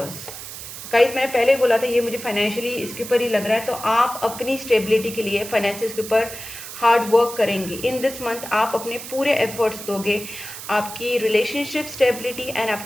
Guys मैंने पहले ही बोला था ये मुझे फाइनेंशियली इसके ऊपर ही लग रहा है, तो आप अपनी स्टेबिलिटी के लिए फाइनेंसिस के ऊपर हार्ड वर्क करेंगे। इन दिस मंथ आप अपने पूरे एफर्ट्स दोगे आपकी रिलेशनशिप स्टेबिलिटी एंड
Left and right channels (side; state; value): right; noise; hiss, 11 dB below the sound